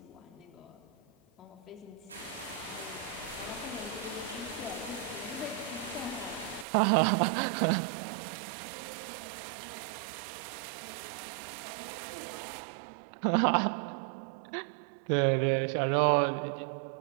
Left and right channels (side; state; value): left; drops out; at 6.7 s